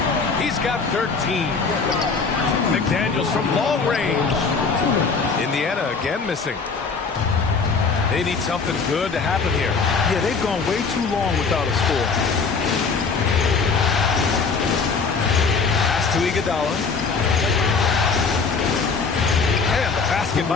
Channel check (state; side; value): quieter; right; 4.9 dB